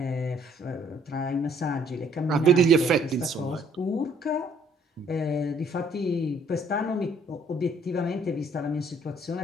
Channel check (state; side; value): normal; both; correlation 0.63